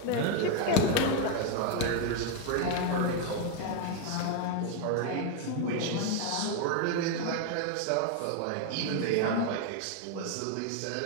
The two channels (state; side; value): different; both; correlation 0.01